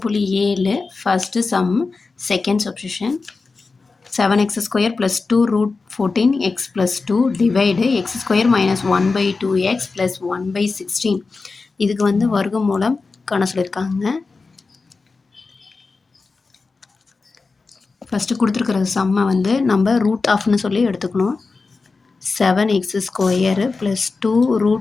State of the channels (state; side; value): quieter; right; 4.1 dB